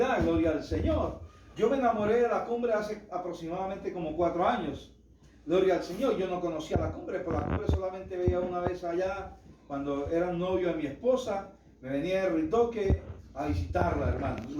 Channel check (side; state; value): both; identical; correlation 1.00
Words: gloria al Señor. Yo me enamoré de la cumbre hace aproximadamente como 4 años. Gloria al Señor. Yo no conocía la cumbre, pero la cumbre solamente veía una vez allá, cuando era novio de mi esposa. Me venía de Ritoque a visitarla, hermano.